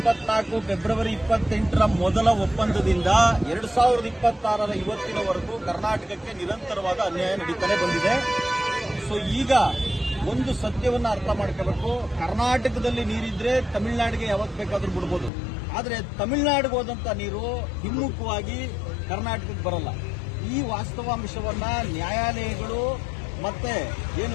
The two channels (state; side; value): drops out; right; at 15.3 s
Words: 2024 ಫೆಬ್ರವರಿ 28ರ ಮೊದಲ ಒಪ್ಪಂದದಿಂದ 2026ರ ಇವತ್ತಿನವರೆಗೂ ಕರ್ನಾಟಕಕ್ಕೆ ನಿರಂತರವಾದ ಅನ್ಯಾಯ ನಡೀತಾನೆ ಬಂದಿದೆ. ಸೊ ಈಗ ಒಂದು ಸತ್ಯವನ್ನ ಅರ್ಥ ಮಾಡ್ಕೋಬೇಕು. ಕರ್ನಾಟಕದಲ್ಲಿ ನೀರಿದ್ರೆ ತಮಿಳುನಾಡಿಗೆ ಯಾವತ್ತು ಬೇಕಾದ್ರೂ ಬಿಡ್ಬೋದು, ಆದರೆ ತಮಿಳುನಾಡಿಗೆ ಹೋದಂತ ನೀರು ಹಿಮ್ಮುಖವಾಗಿ ಕರ್ನಾಟಕಕ್ಕೆ ಬರಲ್ಲ. ಈ ವಾಸ್ತವಾಂಶವನ್ನ ನ್ಯಾಯಾಲಯಗಳು ಮತ್ತೆ ಏನು